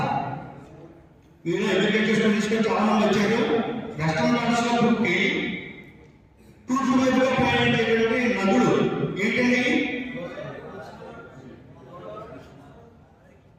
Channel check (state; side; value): identical; both; correlation 1.00